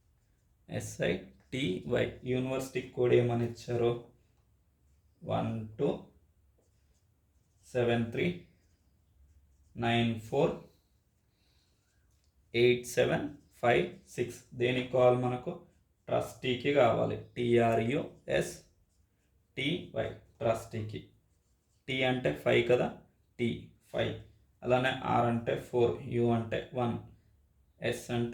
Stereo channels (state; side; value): identical; both; correlation 1.00